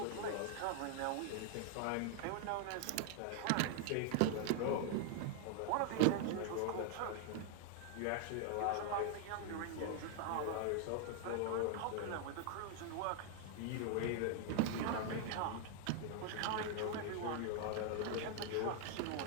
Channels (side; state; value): both; different; correlation 0.00